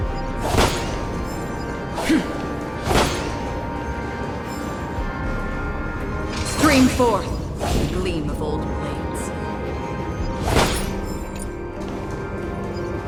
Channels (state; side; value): identical; both; correlation 1.00